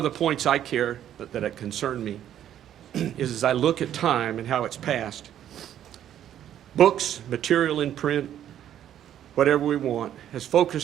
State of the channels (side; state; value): left; quieter; 10.8 dB